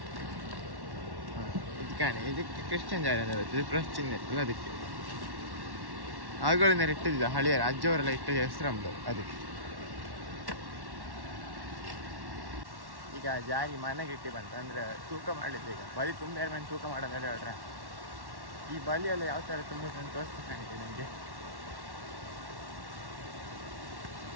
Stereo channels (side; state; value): left; late; 1.1 ms